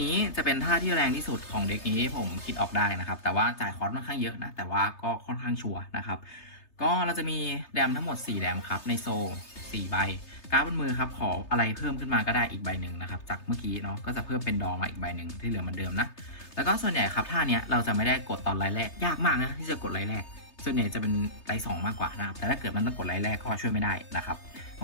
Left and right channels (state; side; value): late; right; 3.3 ms